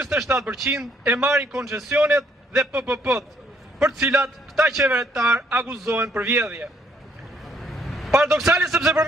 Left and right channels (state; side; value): normal; both; correlation 0.68